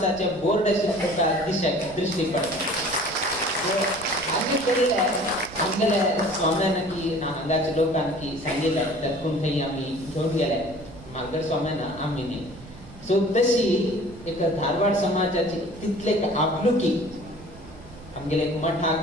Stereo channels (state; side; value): noise; right; rumble, 19 dB below the sound